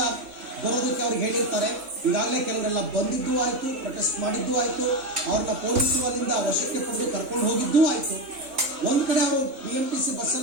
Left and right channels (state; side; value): late; left; 3.5 ms